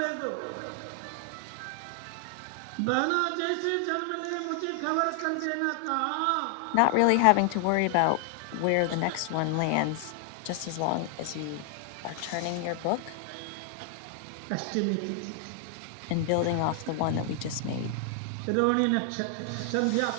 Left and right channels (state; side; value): different; both; correlation 0.00